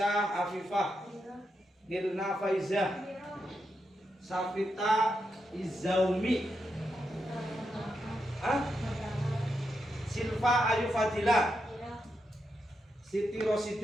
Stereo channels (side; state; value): both; normal; correlation 0.84